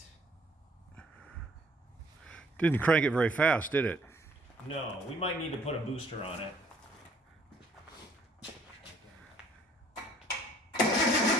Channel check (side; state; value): both; normal; correlation 0.60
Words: Didn't crank it very fast, did it? No, we might need to put a booster on it.